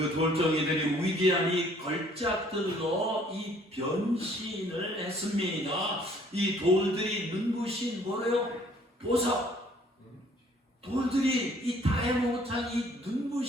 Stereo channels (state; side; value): normal; both; correlation 0.59